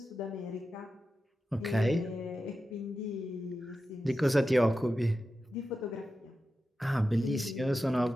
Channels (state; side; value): normal; both; correlation 0.91